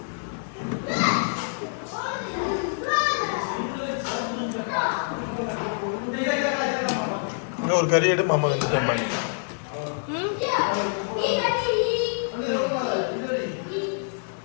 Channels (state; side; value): silent; right; 60 dB below the other